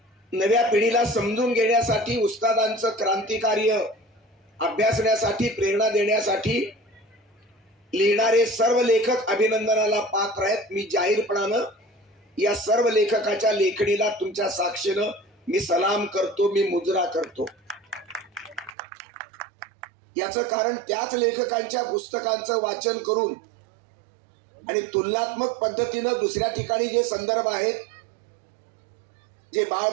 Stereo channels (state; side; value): drops out; left; at 18.7 s